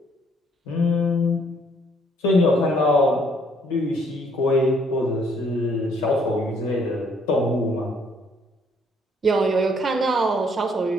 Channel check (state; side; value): normal; both; correlation 0.65